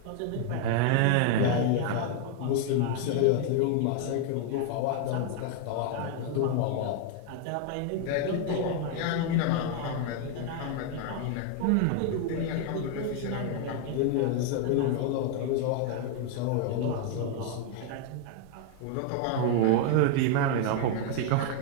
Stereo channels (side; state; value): both; different; correlation 0.00